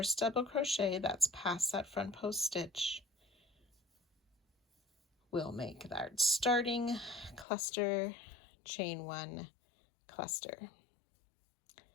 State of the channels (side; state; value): right; drops out; at 7.5 s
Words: double crochet that's past that front post stitch, we'll make that starting cluster, chain 1, cluster.